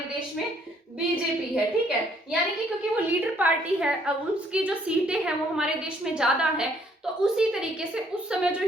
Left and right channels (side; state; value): both; normal; correlation 0.65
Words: देश में बीजेपी है। ठीक है, यानी कि क्योंकि वो लीडर पार्टी है, अब उसकी जो सीटें हैं वो हमारे देश में ज्यादा है, तो उसी तरीके से उस समय जो